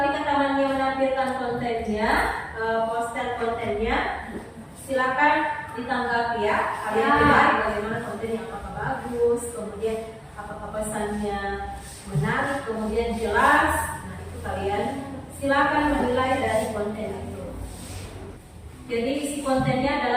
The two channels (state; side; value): identical; both; correlation 1.00